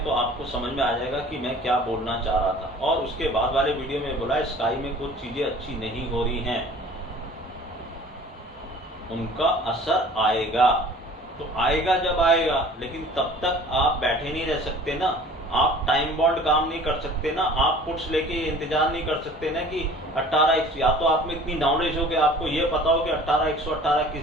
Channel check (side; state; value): both; normal; correlation 0.47